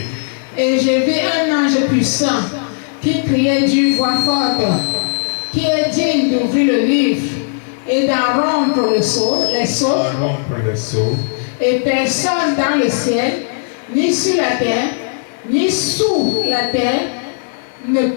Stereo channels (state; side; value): silent; right; digital silence